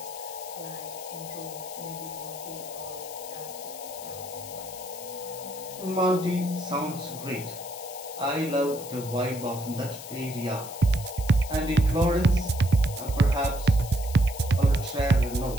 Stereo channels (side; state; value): left; noise; hiss, 13 dB below the sound